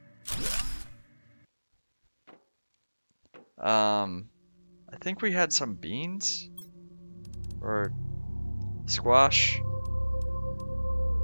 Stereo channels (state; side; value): inverted; both; correlation -1.00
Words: I think we had some beans or squash.